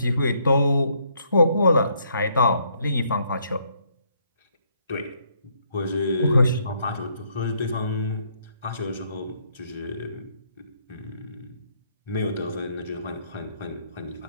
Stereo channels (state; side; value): inverted; both; correlation -0.70